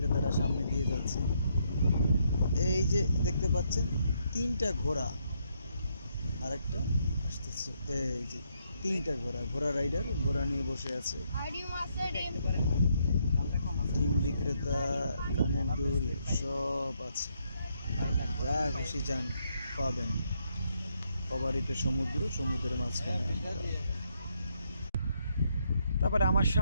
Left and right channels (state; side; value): inverted; both; correlation -0.75